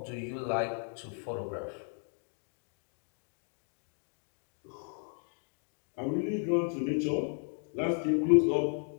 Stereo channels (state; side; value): silent; right; 55 dB below the other